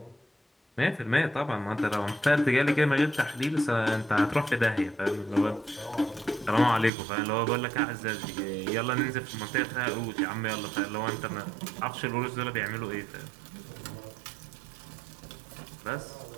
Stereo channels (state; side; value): drops out; left; at 6.9 s